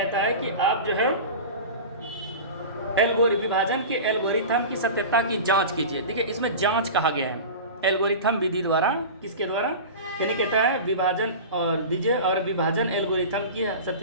है कि आप जो है विभाजन के एल्गोरिथम की सत्यता की जांच कीजिए। देखिए इसमें जांच कहा गया है, एल्गोरिथम विधि द्वारा, किसके द्वारा, यानी कहता है विभाजन और दीजिए और विभाजन एल्गोरिथम की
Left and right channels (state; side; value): inverted; both; correlation -0.31